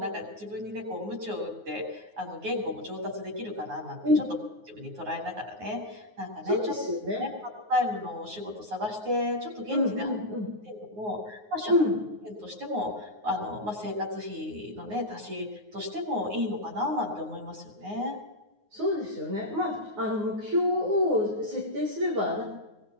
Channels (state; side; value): late; left; 9.5 ms